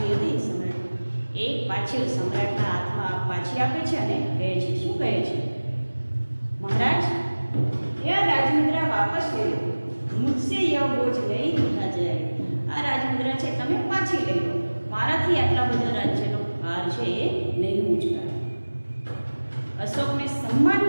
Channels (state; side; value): inverted; both; correlation -1.00